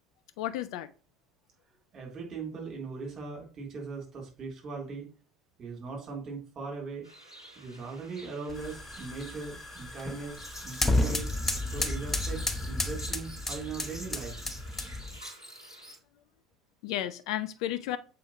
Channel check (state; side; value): normal; both; correlation 0.61